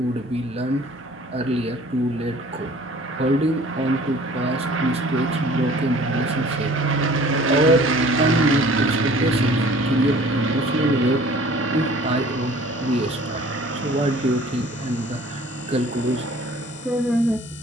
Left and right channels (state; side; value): normal; both; correlation 0.50